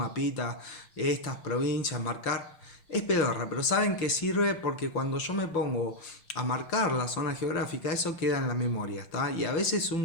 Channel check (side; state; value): right; late; 5.8 ms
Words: estas provincias, marcar. Es pedorra, pero saben que sirve porque cuando yo me pongo a marcar la zona geográfica, eso queda en la memoria, ¿está? Y a veces